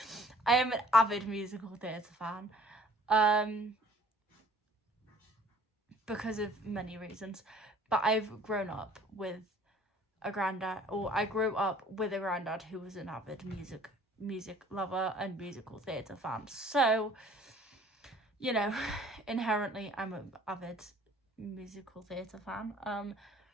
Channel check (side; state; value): both; normal; correlation 0.54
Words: am an avid musical theatre fan because of many reasons, but I've grown up with a granddad, or I grew up with a granddad who was an avid music lover and musical theatre fan, so you know, inherently I'm an avid musical theatre fan.